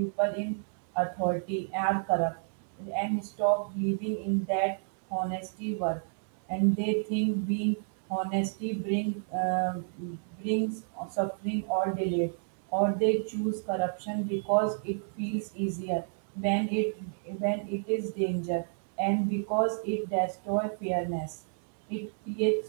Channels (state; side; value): silent; left; digital silence